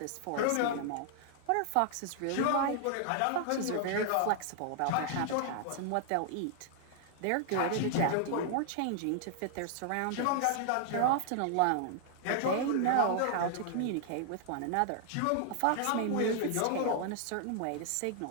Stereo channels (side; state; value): both; different; correlation -0.01